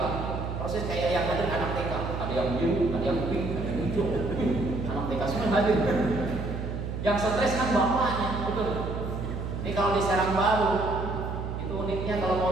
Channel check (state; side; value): noise; right; hum, 5 dB below the sound